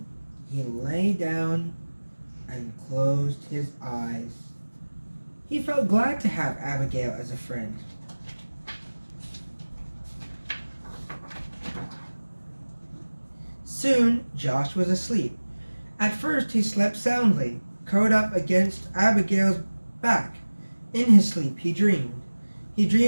he lay down and closed his eyes. He felt glad to have Abigail as a friend. Soon, Josh was asleep. At first, he slept soundly, curled up against Abigail's back. In his sleep, he dreamed. He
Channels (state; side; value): inverted; both; correlation -1.00